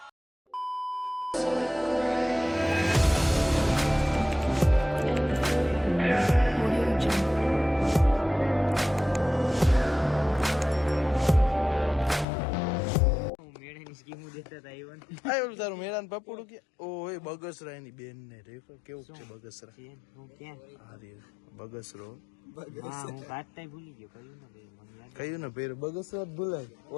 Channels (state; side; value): drops out; right; at 12.2 s